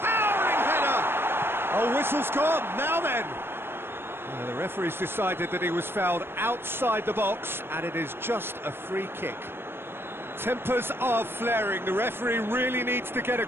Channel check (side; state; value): left; late; 0.11 ms